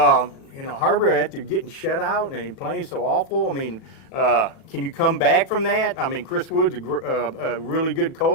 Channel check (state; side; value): late; right; 38 ms